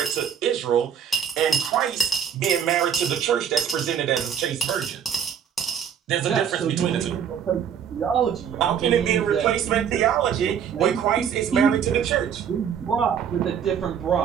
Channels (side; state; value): left; quieter; 8.1 dB